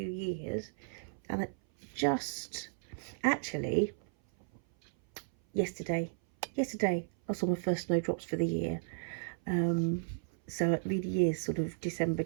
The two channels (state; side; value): silent; left; 55 dB below the other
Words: years. And actually yesterday I saw my first snowdrops for the year. So it really is sort of December,